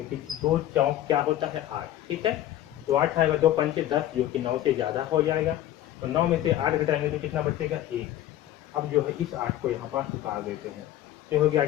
2 चौक क्या होता है 8। ठीक है, तो 8 आएगा 2 पंचे 10, जो कि 9 से ज्यादा हो जाएगा। तो 9 में से 8 घटाएंगे तो कितना बचेगा 1। अब जो है इस 8 को यहाँ पास उतार देते हैं, तो हो गया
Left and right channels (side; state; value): right; quieter; 13.1 dB